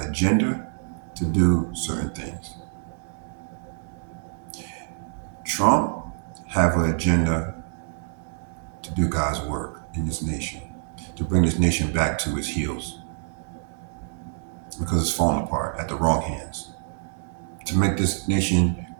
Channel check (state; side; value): silent; left; digital silence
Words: agenda to do certain things. Trump have an agenda to do God's work in this nation, to bring this nation back to its heels because it's falling apart at the wrong hands, to make this nation